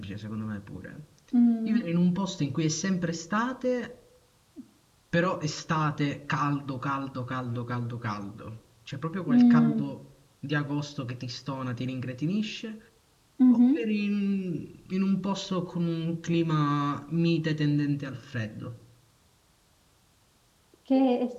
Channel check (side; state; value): both; identical; correlation 1.00